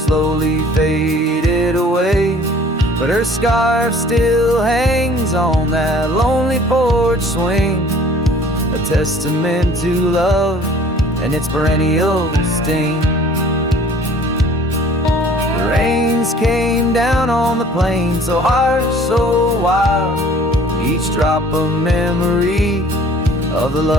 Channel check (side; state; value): both; normal; correlation 0.52